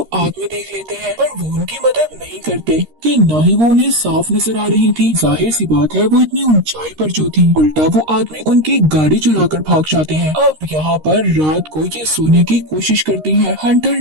आदमी देख लेते हैं, पर वो उनकी मदद नहीं करते कि न ही वो उन्हें साफ नजर आ रही थी। जाहिर सी बात है, वो इतनी ऊंचाई पर जो थी। उल्टा वो आदमी उनकी गाड़ी चुराकर भाग जाते हैं। अब यहाँ पर रात को ये सोने की कोशिश करती है। हंटर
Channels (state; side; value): late; left; 13 ms